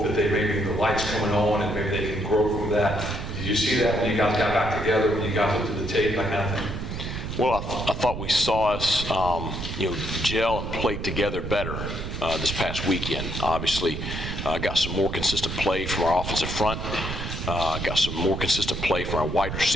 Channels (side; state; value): right; noise; rumble, 6 dB below the sound